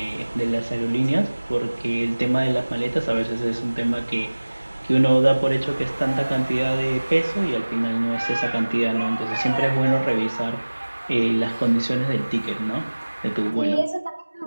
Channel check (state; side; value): inverted; both; correlation -1.00